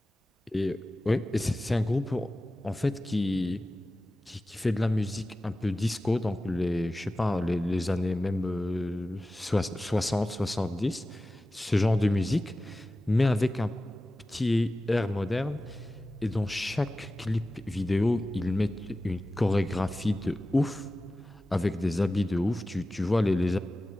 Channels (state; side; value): normal; both; correlation 0.96